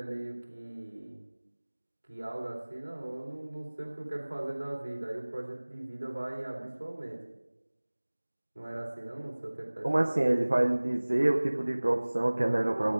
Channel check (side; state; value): both; inverted; correlation -1.00